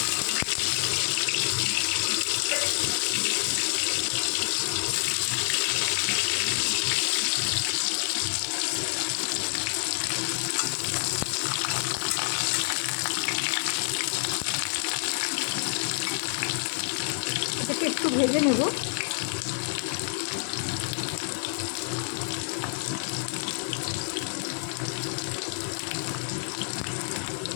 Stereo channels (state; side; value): silent; right; 59 dB below the other